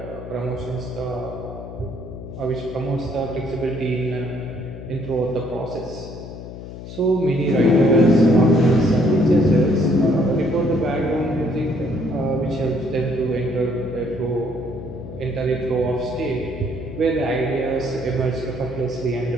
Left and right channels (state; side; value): noise; left; hum, 12 dB below the sound